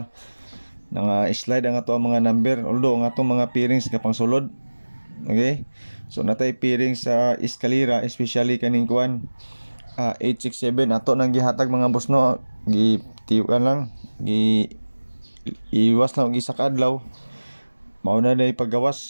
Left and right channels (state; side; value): inverted; both; correlation -1.00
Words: nga slide ang ato ang mga number, although ang atong mga pairings kapang sulod. Okay? So natay pairing sa eskalera, especially kaning kuan 867 ato nang gihatag mga boss no. Gitiwan lang, iwas lang isa ka adlaw. Mauna na